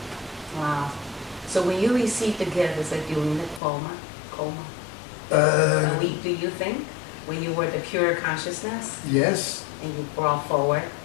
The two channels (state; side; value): drops out; right; at 3.6 s